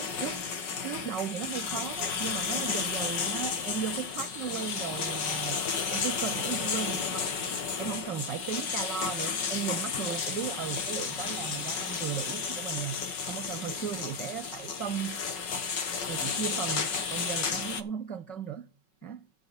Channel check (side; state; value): right; late; 5.4 ms